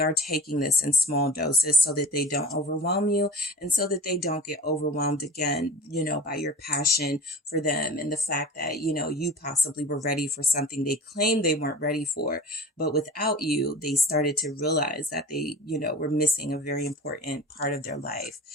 taking this in small doses so that they don't overwhelm you, and so that they don't get overwhelmed again, by your passion for them and the fact that, you possibly were ready for something they claimed they weren't ready for, but without you, they started to realize that they, were missing a very important part of their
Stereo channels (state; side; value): normal; both; correlation 0.37